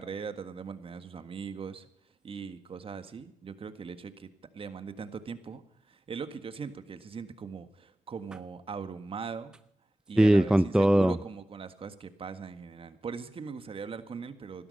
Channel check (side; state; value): both; normal; correlation 0.94